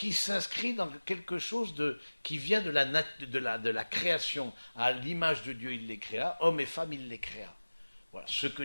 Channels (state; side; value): inverted; both; correlation -1.00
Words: s'inscrit dans quelque chose qui vient de la création. À l'image de Dieu, il les créa, hommes et femmes, il les créa. Voilà, ce que